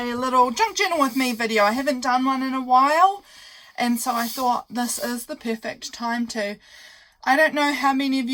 little junk journal with me video. I haven't done one in a while, and so I thought this is the perfect time to. I don't know how many of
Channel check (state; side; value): identical; both; correlation 1.00